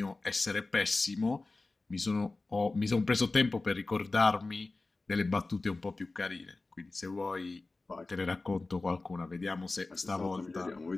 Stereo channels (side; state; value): right; quieter; 3.4 dB